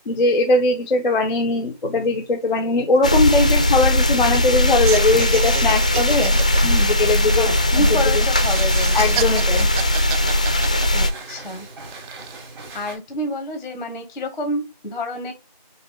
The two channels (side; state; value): both; inverted; correlation -0.30